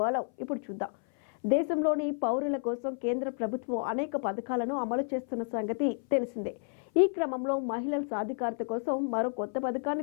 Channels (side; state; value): right; silent; 57 dB below the other